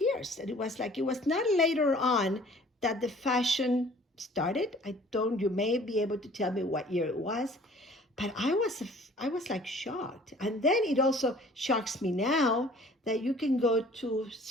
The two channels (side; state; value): both; normal; correlation 0.52